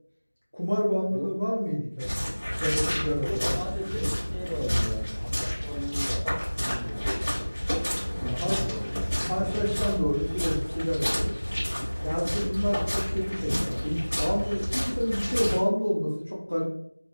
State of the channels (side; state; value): both; inverted; correlation -1.00